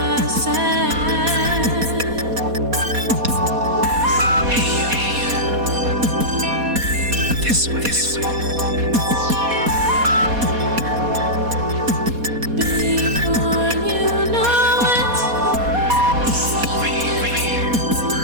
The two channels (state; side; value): late; left; 4.2 ms